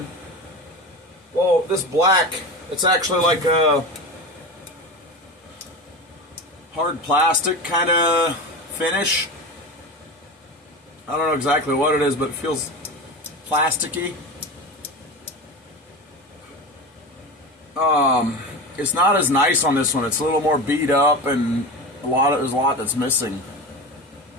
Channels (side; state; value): both; normal; correlation 0.26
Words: well, this black, it's actually like a hard plastic kind of finish. I don't know exactly what it is, but it feels plasticky. It's not as nice on this one. It's a little more beat up, and there's a lot that's missing.